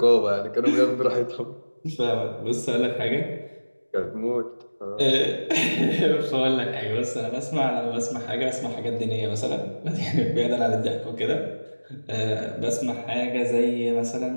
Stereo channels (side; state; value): both; inverted; correlation -1.00